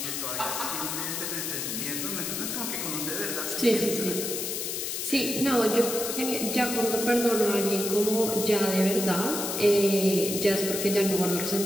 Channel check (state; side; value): noise; left; hiss, 3 dB below the sound